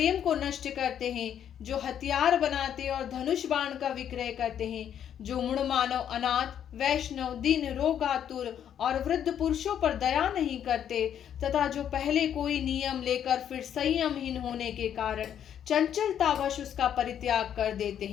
को नष्ट करते हैं, जो हथियार बनाते और धनुष बाण का विक्रय करते हैं, जो मूढ़ मानव, अनाथ, वैष्णव, दीन, रोगातुर और वृद्ध पुरुषों पर दया नहीं करते, तथा जो पहले कोई नियम लेकर फिर संयमहीन होने के कारण चंचलतावश उसका परित्याग कर देते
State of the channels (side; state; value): right; quieter; 9.5 dB